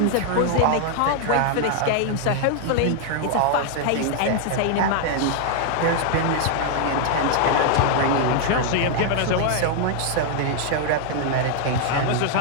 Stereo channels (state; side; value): different; both; correlation 0.00